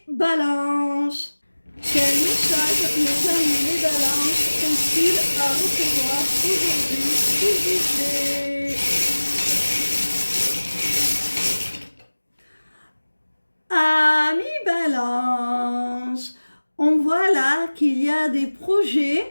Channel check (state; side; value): inverted; both; correlation -1.00